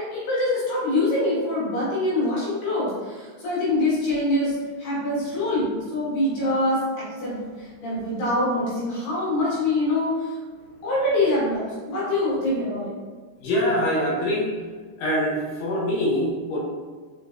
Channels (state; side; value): late; right; 13 ms